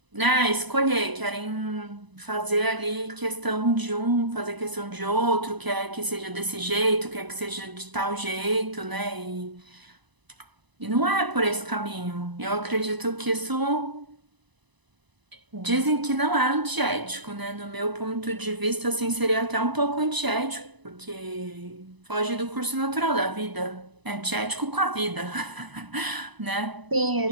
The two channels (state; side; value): late; left; 1.0 ms